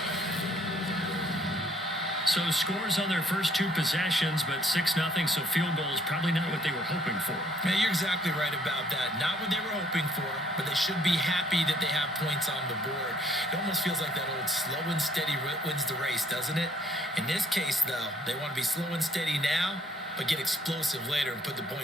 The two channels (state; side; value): normal; both; correlation 0.63